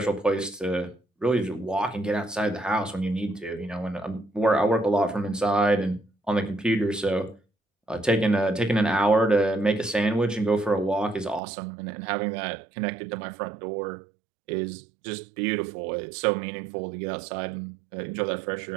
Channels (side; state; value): left; drops out; at 11.4 s